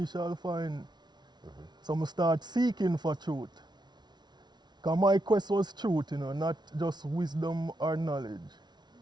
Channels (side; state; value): left; late; 0.20 ms